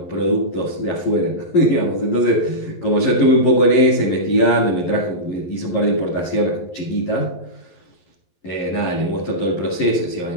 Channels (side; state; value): right; late; 11 ms